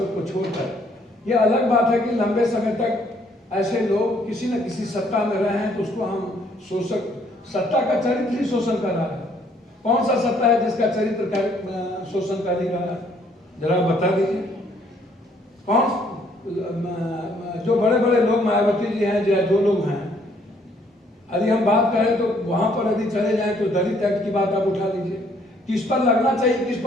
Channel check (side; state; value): both; normal; correlation 0.65